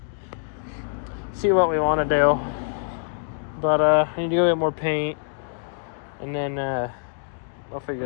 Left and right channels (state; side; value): silent; right; digital silence